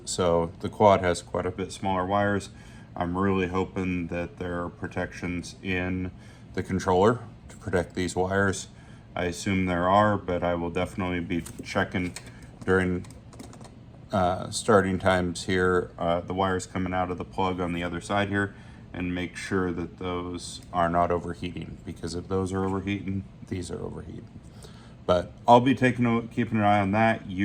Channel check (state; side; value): identical; both; correlation 1.00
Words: So the quad has quite a bit smaller wires. I'm really hoping that there are protections in the controller to protect these wires. I assume there are, but I will definitely be checking during starting times here, the wires coming out of the plug on the other side here, and make sure that those are not overheating, because if those are overheating, these are overheating. But I'll be keeping an eye on that.